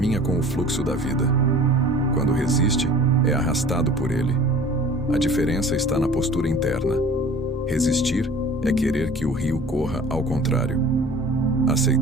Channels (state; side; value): normal; both; correlation 0.45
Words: com o fluxo da vida. Quando resiste, é arrastado por ele. A diferença está na postura interna. Resistir é querer que o rio corra ao contrário.